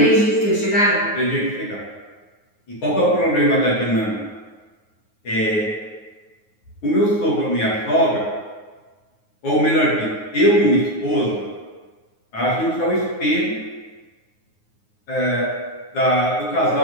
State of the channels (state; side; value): late; right; 9.5 ms